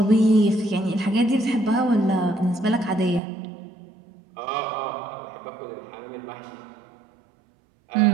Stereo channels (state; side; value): drops out; left; at 3.2 s